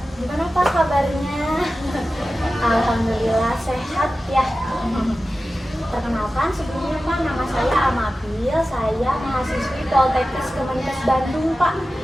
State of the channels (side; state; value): both; normal; correlation 0.94